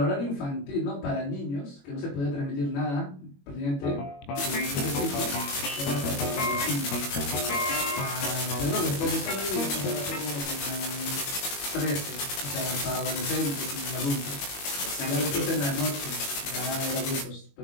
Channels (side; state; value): right; late; 21 ms